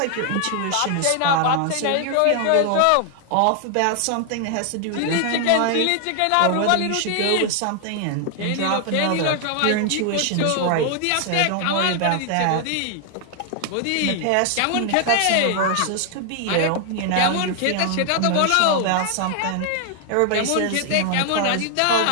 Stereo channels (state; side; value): different; both; correlation 0.00